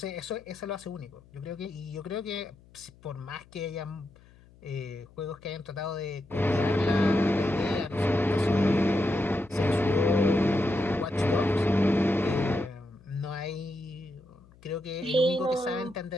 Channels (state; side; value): noise; left; hum, 26 dB below the sound